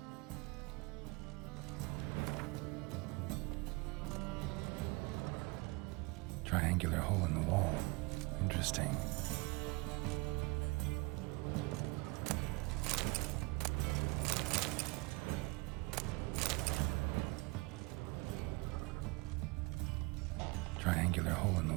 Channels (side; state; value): left; quieter; 26.1 dB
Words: Triangular hole in the wall. Interesting. Triangular hole in the